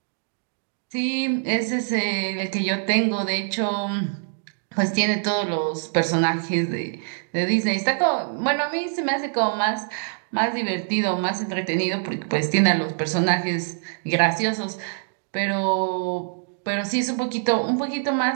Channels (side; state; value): left; silent; digital silence